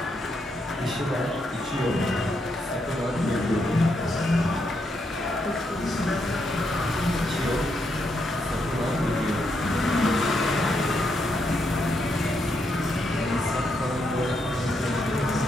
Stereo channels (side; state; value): both; normal; correlation 0.79